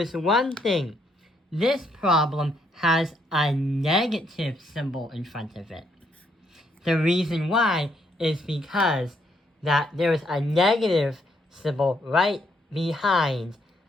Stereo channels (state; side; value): normal; both; correlation 0.73